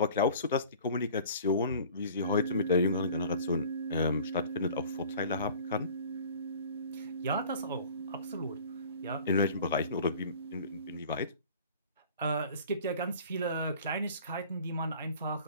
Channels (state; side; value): inverted; both; correlation -0.46